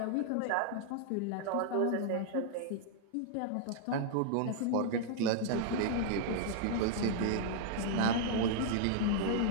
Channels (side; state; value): both; different; correlation -0.01